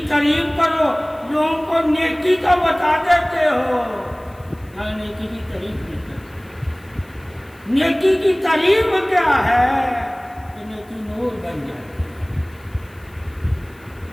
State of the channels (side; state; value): left; noise; hiss, 29 dB below the sound